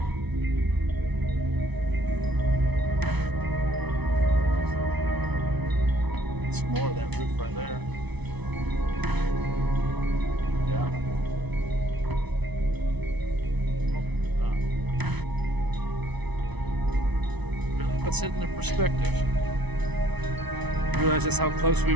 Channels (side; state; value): left; late; 1.0 ms